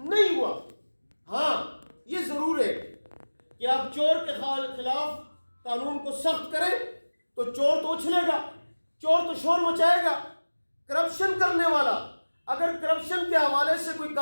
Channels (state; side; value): inverted; both; correlation -1.00